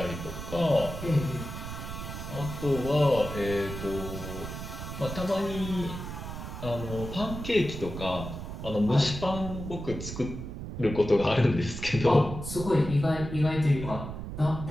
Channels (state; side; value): noise; right; rumble, 8 dB below the sound